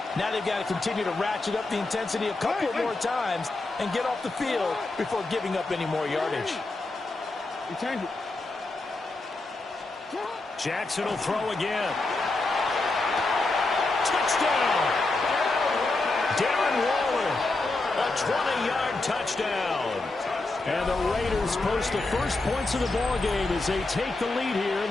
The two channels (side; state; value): right; quieter; 3.2 dB